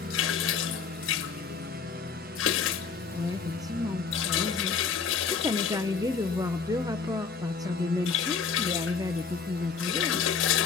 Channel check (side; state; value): right; quieter; 5.8 dB